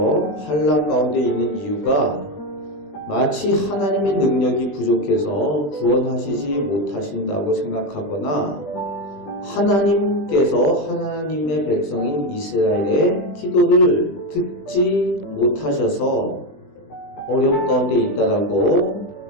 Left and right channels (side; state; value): right; late; 20 ms